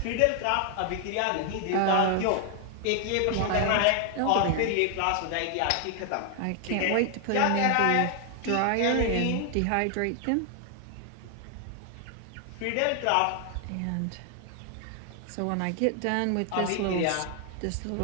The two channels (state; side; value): different; both; correlation 0.00